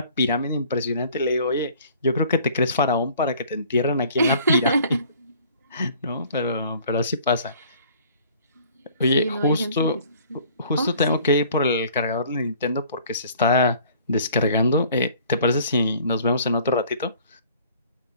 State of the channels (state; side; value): inverted; both; correlation -0.53